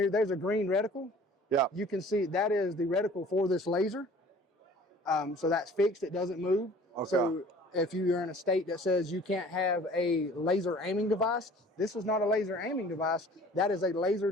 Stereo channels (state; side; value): normal; both; correlation 0.49